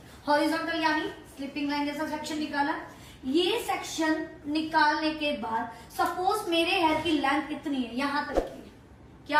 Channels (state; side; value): identical; both; correlation 1.00